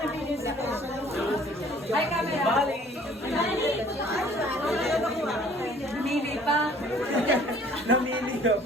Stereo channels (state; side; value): normal; both; correlation 0.55